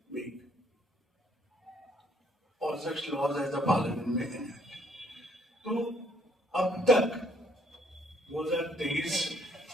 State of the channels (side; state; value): both; normal; correlation 0.66